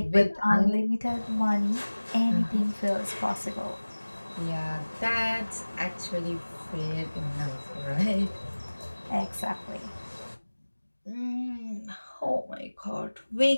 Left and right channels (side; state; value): both; inverted; correlation -1.00